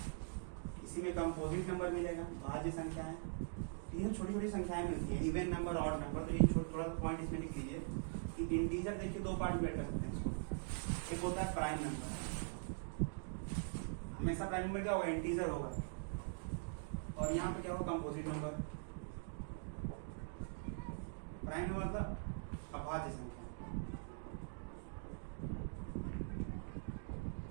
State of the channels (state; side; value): silent; left; digital silence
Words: इसी में कंपोजिट नंबर मिलेगा, भाज्य संख्याएं, ये छोटी छोटी संख्याएं मिलती हैं, इवन नंबर ऑड नंबर। तो ये थोड़ा पॉइंट इसमें लिख लीजिए कि इंटीजर देखिए दो पार्ट में बैठ कर सकते हैं इसको। एक होता है प्राइम नंबर, हमेशा प्राइम नंबर क्या होगा, इंटीजर होगा, और यहाँ पे क्या होगा, कंपोजिट नंबर। प्राइम नंबर मतलब अभाज्य संख्या,